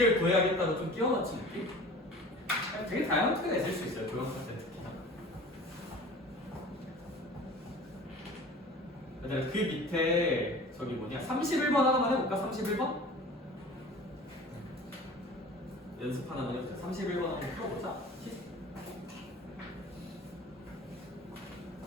구해야겠다고 좀 끼워 맞춘 느낌? 되게 다양한 투가 있을 수 있어요, 도형사 때 특히나. 그 밑에 저기 뭐냐 31번 하나만 해볼까? 31번? 연습 하나만 해보자. 31번 한번 풀어보자.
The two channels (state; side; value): normal; both; correlation 0.42